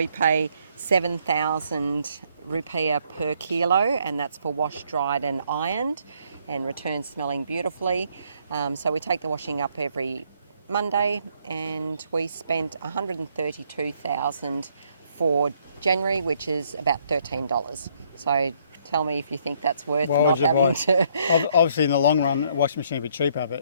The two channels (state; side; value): inverted; both; correlation -0.69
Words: pay 7,000 rupiah per kilo, and that's for washed, dried and ironed, and return smelling beautifully. So we take the washing up every Monday, and we spent $132,000 for January, which is about $13. So tell me if you think that's worth Why not would you having buy? to. Obviously, in the long run, a washing machine would be cheaper,